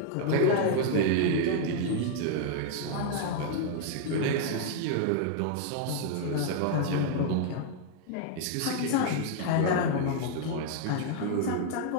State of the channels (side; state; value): both; different; correlation 0.00